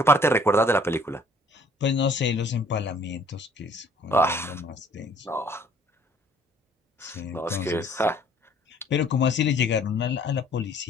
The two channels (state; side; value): normal; both; correlation 0.58